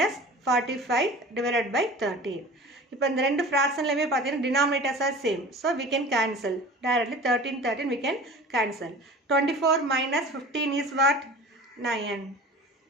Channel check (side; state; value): both; normal; correlation 0.40